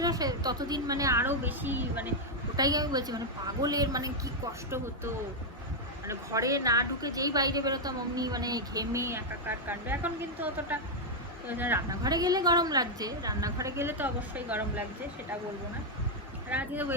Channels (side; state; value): both; normal; correlation 0.00